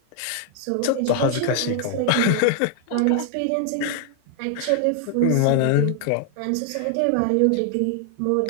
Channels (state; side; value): different; both; correlation 0.00